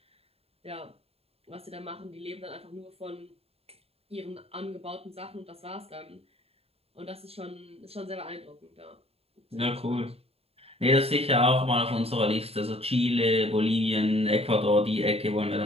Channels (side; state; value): left; late; 0.29 ms